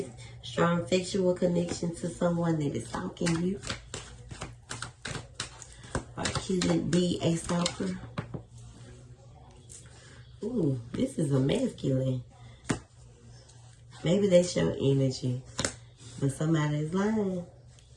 strong sexual connection to someone that is stalking you. Or could it be a stalker? Ooh, this is a masculine. Maybe they show energy, but somebody is lying,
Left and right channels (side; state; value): both; identical; correlation 1.00